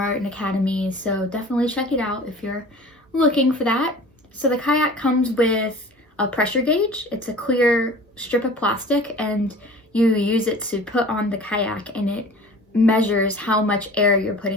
and Academy, so definitely check it out if you're looking for that. So the kayak comes with a pressure gauge. It's a clear strip of plastic, and you use it to put on the kayak, and it measures how much air you're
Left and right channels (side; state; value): both; normal; correlation 0.42